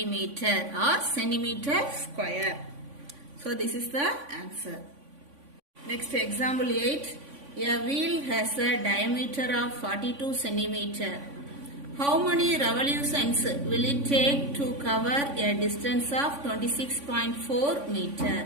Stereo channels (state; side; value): late; left; 3.5 ms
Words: or centimeter square. So this is the answer. Next, example 8. A wheel has a diameter of 42 centimeter. How many revolutions will it take to cover a distance of 26.4